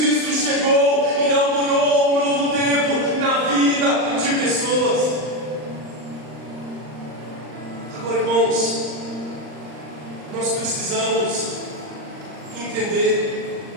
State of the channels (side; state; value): left; late; 39 ms